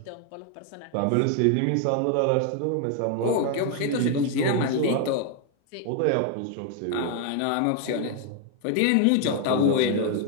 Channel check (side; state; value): both; different; correlation 0.00